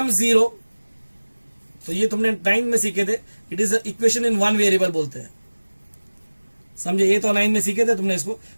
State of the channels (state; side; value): inverted; both; correlation -1.00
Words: 0, तो ये तुमने 9 में सीखे थे, it is equation in one variable बोलते हैं. समझे, ये तो 9 में सीखे थे तुमने इसको.